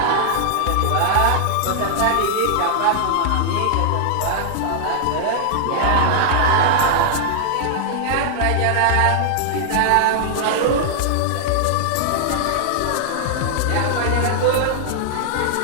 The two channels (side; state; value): both; different; correlation -0.01